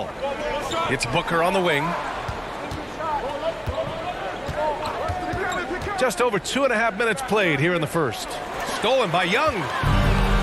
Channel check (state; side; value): identical; both; correlation 1.00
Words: It's Booker on the wing. Just over 2.5 minutes played here in the first. Stolen by Young.